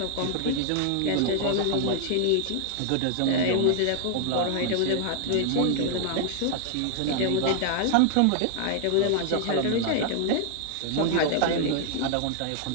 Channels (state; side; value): different; both; correlation 0.00